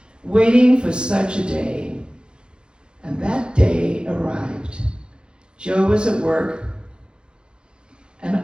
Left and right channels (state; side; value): late; left; 0.051 ms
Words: waiting for such a day. And that day arrived. Joe was at work, and